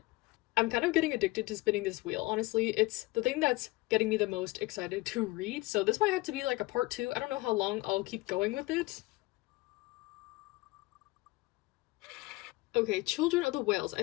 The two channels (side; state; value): right; quieter; 21.5 dB